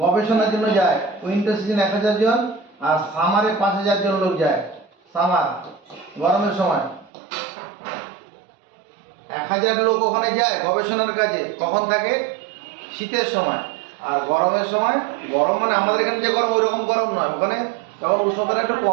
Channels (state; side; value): drops out; left; at 7.1 s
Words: গবেষণার জন্য যায়। উইন্টার সিজন 1000 জন, আর সামারে 5000 জন লোক যায়। সামার গরমের সময় 1000 লোক ওখানে যায় গবেষণার কাজে। কখন থাকে? শীতের সময়। আর গরমের সময়, গরম মানে আমাদের এখানে যে গরম ওই রকম গরম নয়, ওখানে তখন উষ্ণতাটা একটু